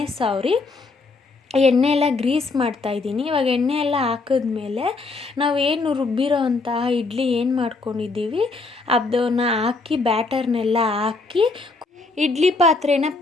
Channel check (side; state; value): right; quieter; 3.8 dB